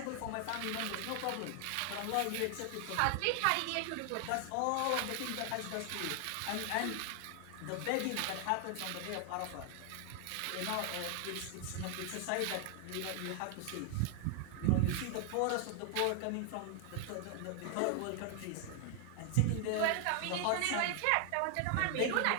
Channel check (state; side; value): different; both; correlation 0.00